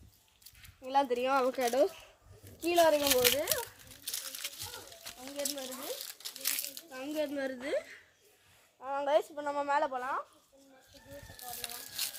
எல்லாம் தெரியும். அவக்காடோ கீழே வரைக்கும் போகுது, அங்கேருந்து வருது. கைஸ் இப்போ நம்ம மேலே போகலாம்.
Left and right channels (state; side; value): identical; both; correlation 1.00